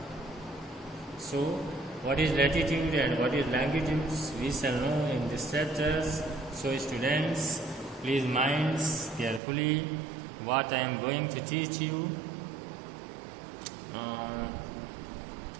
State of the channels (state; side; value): drops out; left; at 9.4 s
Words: So, what is latitude and what is longitudes? We shall know in this chapters. So, students, please mind carefully what I am going to teach you.